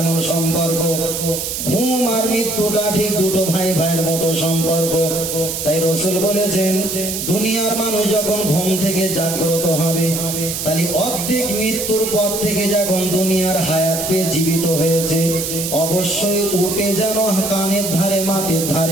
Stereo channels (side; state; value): right; noise; hiss, 4 dB below the sound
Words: সম্পর্ক, ঘুম আর মৃত্যুটা ঠিক দুটো ভাই ভাইয়ের মতো সম্পর্ক। তাই রাসূল বলেছেন, দুনিয়ার মানুষ যখন ঘুম থেকে জাগ্রত হবে, তাহলে অর্ধেক মৃত্যুর পর থেকে যখন দুনিয়ার হায়াত পেয়ে জীবিত হয়েছে, অবশ্যই উঠে যেন কানের ধারে মাথার